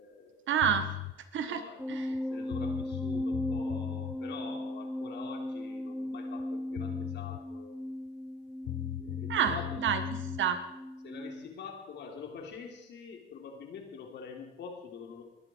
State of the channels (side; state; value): both; normal; correlation 0.37